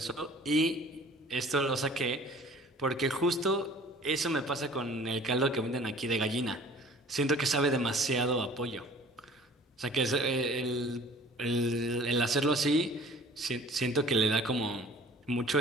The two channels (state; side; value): normal; both; correlation 0.48